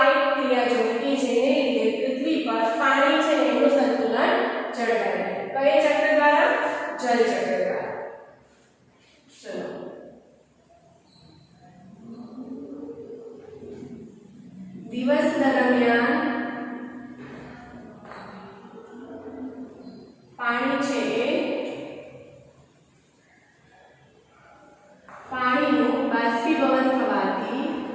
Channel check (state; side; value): identical; both; correlation 1.00